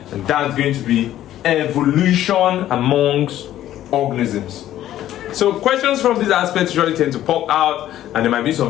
And that's going to be evolution amongst organisms. So questions from these aspects usually tend to pop out, and there might be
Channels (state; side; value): quieter; right; 12.7 dB